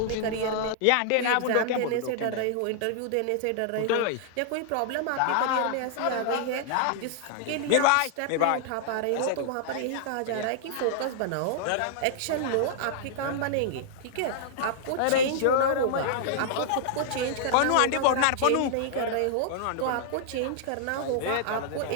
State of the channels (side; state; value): both; different; correlation -0.01